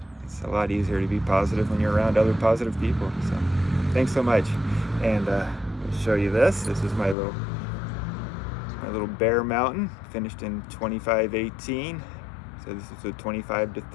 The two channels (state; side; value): drops out; right; at 7.2 s